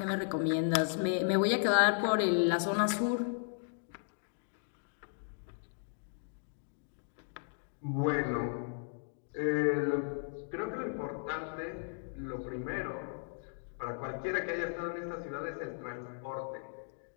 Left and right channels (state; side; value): silent; right; digital silence